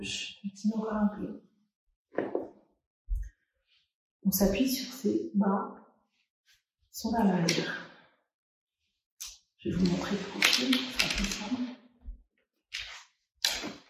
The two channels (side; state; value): both; identical; correlation 1.00